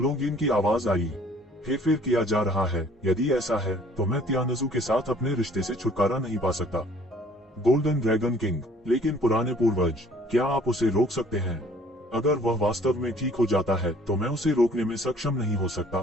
की आवाज आई। हेरफेर किया जा रहा है। यदि ऐसा है तो मैं तियानजू के साथ अपने रिश्ते से छुटकारा नहीं पा सकता। गोल्डन ड्रैगन किंग, लेकिन पुराने पूर्वज, क्या आप उसे रोक सकते हैं? अगर वह वास्तव में ठीक हो जाता है तो मैं उसे रोकने में सक्षम नहीं हो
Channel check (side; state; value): both; normal; correlation 0.56